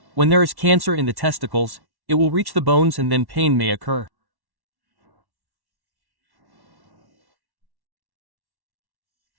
when there is cancer in the testicles, it will reach the bones and then pain may occur.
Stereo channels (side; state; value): left; late; 1.1 ms